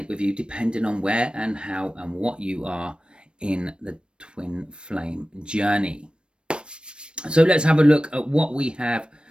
with you depending on where and how and what you are in the twin flame journey. So let's have a look at what we have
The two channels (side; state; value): left; late; 0.056 ms